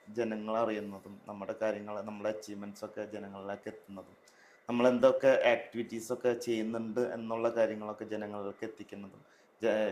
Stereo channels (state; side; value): identical; both; correlation 1.00